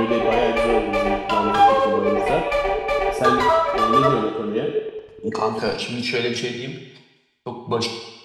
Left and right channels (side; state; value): both; identical; correlation 1.00